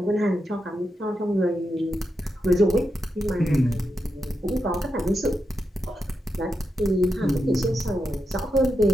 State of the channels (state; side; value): normal; both; correlation 0.86